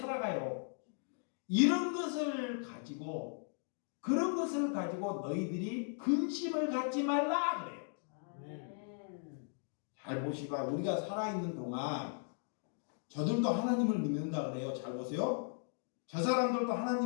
그런 것을 가지고 너희들이 근심을 갖지 말라 그래요. 잘 보시고 우리가 살아있는 동안 저들도 하나님을 믿는다 그래요. 잘 보세요. 저 사람들도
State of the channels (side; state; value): right; silent; 53 dB below the other